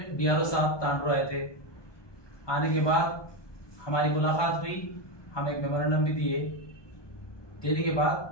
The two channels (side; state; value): right; late; 1.2 ms